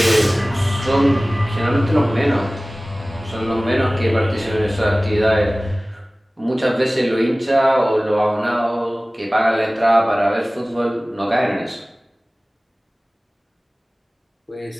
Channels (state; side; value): normal; both; correlation 0.98